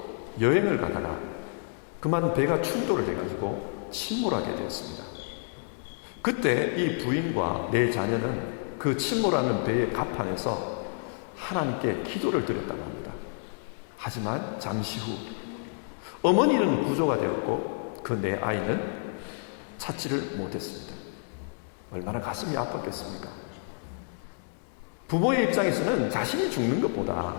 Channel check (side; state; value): right; silent; digital silence